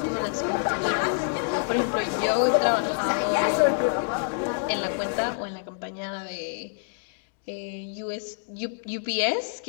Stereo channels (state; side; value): silent; right; digital silence